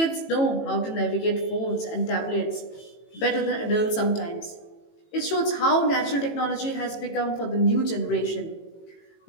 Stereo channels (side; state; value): right; late; 18 ms